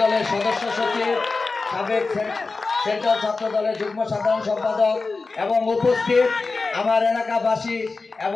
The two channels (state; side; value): quieter; right; 3.9 dB